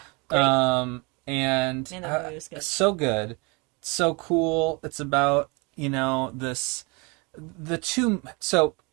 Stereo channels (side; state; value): left; quieter; 29.4 dB